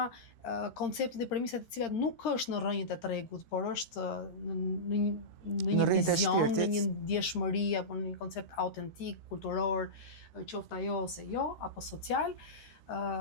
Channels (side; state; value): right; late; 13 ms